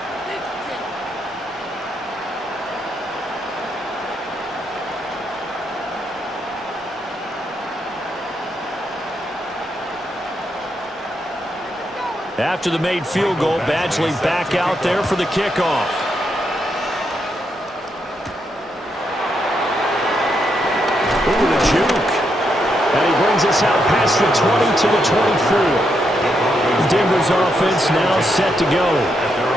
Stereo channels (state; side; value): normal; both; correlation 0.80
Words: After the made field goal, Badgley back out there for the kickoff. Ooh, the juke. And he brings us out past the 20 to the 24. Denver's offense now set to go.